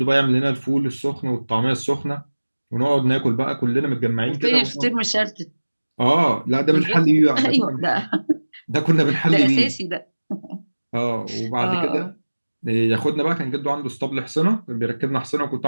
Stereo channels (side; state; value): both; inverted; correlation -1.00